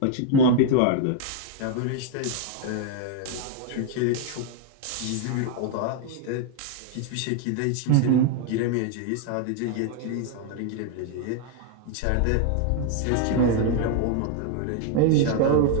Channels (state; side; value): different; both; correlation 0.00